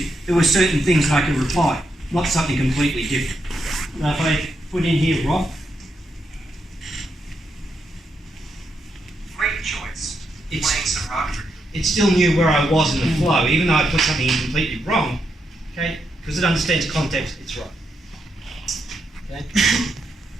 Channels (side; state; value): both; normal; correlation 0.81